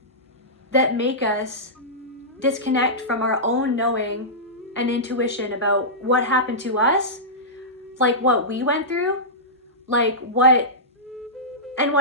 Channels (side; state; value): both; normal; correlation -0.15